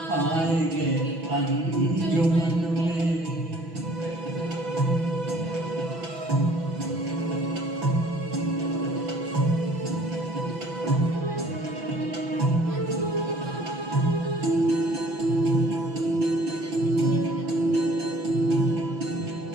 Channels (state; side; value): late; left; 6.0 ms